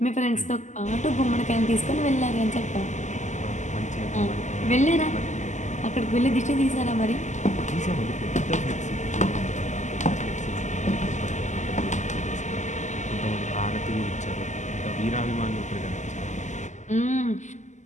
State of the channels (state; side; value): late; right; 0.34 ms